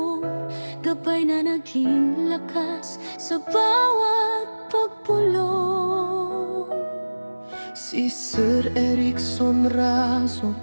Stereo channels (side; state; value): both; inverted; correlation -1.00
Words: gabay na naging lakas sa bawat pagpulong. Si Sir Erickson Razo